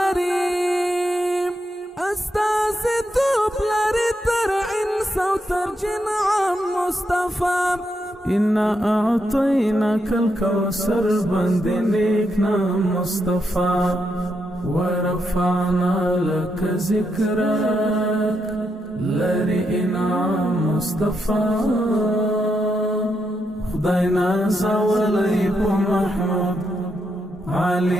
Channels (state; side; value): normal; both; correlation 0.82